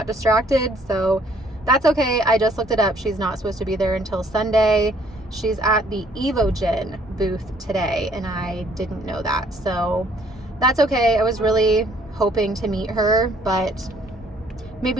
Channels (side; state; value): both; normal; correlation 0.62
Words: distracted, so that's okay. I just looked it up. She's not supposed to be there until Sunday. She's at the Evogen booth today, and I didn't know that, so that's okay. I was really hoping to meet her, but